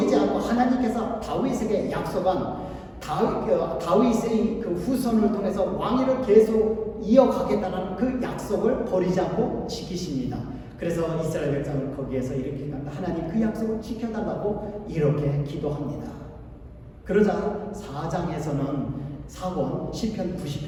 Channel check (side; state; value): both; identical; correlation 1.00